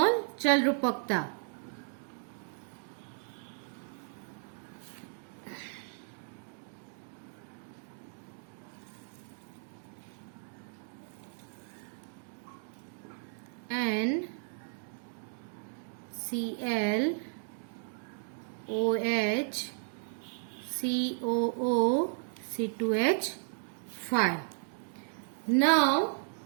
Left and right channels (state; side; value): silent; left; digital silence